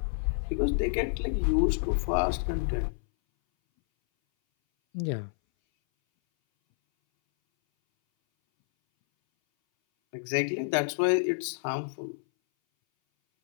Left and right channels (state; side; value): silent; right; 59 dB below the other